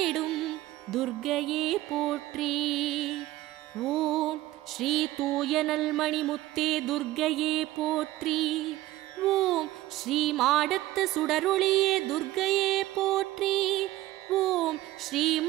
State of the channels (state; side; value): quieter; left; 16.4 dB